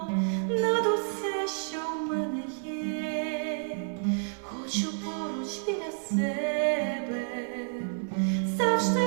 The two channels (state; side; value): silent; left; 58 dB below the other